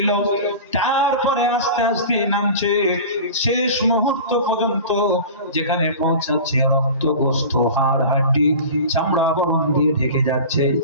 তারপরে আস্তে আস্তে নামছে, শেষ মুহূর্ত পর্যন্ত যেখানে পৌঁছাচ্ছে রক্ত, গোস্ত, হাড়, হাড্ডি, চামড়া বরণ দিয়ে ঢেকে যাচ্ছে।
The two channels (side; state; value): both; inverted; correlation -0.35